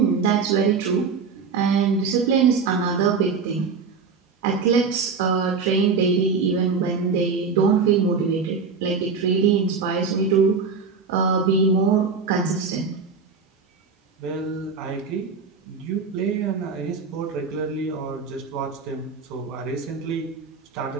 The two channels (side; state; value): left; quieter; 5.2 dB